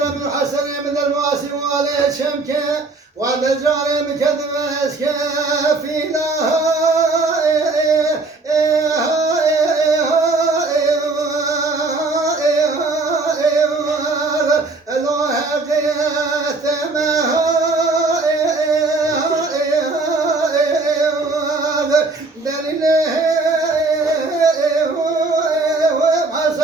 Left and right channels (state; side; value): quieter; left; 3.5 dB